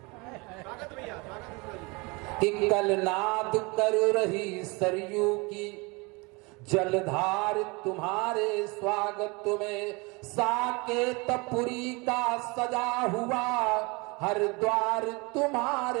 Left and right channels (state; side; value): quieter; left; 27.2 dB